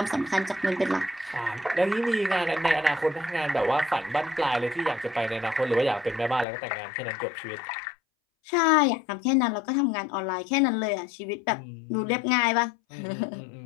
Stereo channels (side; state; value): right; drops out; at 6.5 s